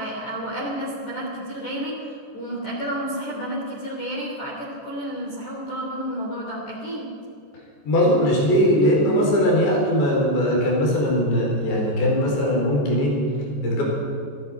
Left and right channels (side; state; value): right; late; 14 ms